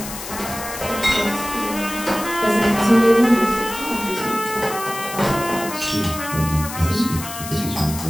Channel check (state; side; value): noise; left; hiss, 10 dB below the sound